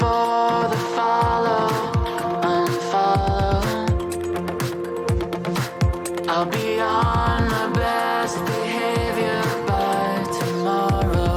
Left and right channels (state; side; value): identical; both; correlation 1.00